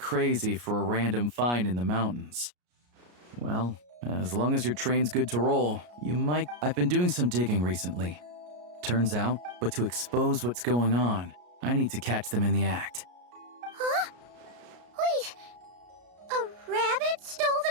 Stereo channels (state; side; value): late; left; 33 ms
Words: for a random find in the mountains. Well, as long as your train's good to roll, you might... I've been doing some digging recently. Turns out, but to expose what's going on, I need to catch them in the act. Huh? Wait, a rabbit stole